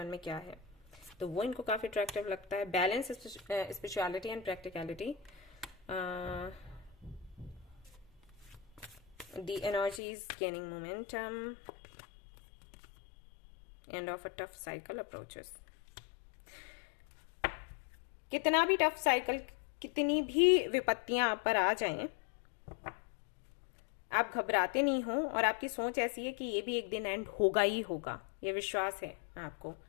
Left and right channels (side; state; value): right; drops out; at 10.0 s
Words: में क्या है, तो वो इनको काफी अट्रैक्टिव लगता है। Balance, spirituality and practicality, the energy is gaining momentum, end of a tough cycle approaches. कितना भी टफ साइकिल, कितनी भी विपत्तियां आप पर आ जाएं, आप घबराते नहीं हो, और आपकी सोच ऐसी है कि ये भी एक दिन एंड होगा ही होगा, ये विश्वास है आपको।